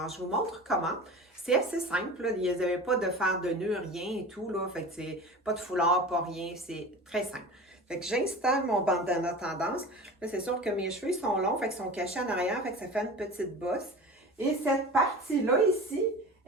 je vous montre comment. C'est assez simple, là. Il n'y avait pas de faire de nœud, rien et tout, là. Fait que c'est pas de foulard, pas rien, c'est très simple. Fait que j'installe mon bandana tendance. Là, c'est sûr que mes cheveux sont longs, fait qu'ils sont cachés en arrière, fait que ça fait une petite bosse. Et cette partie-là ici,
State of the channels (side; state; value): both; normal; correlation 0.35